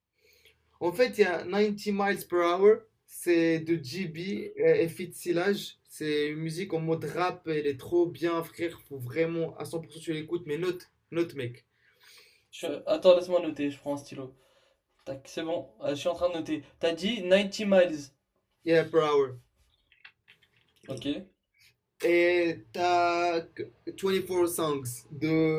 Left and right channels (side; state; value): both; identical; correlation 1.00